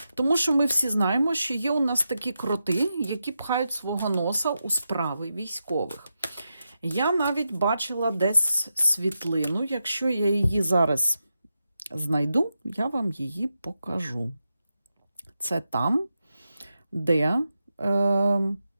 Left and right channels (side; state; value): both; inverted; correlation -0.88